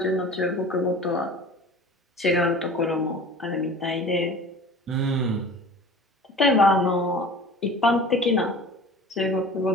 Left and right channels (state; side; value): normal; both; correlation 0.41